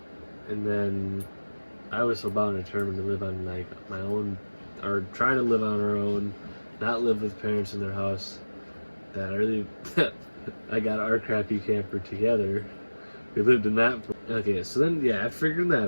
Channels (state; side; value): inverted; both; correlation -1.00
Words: And then I was so bound and determined to live on like my own, or try to live on our own, not live with parents in their house, that I really, I got our crappy camper together. We lived in that. Okay, so then, yeah, after figuring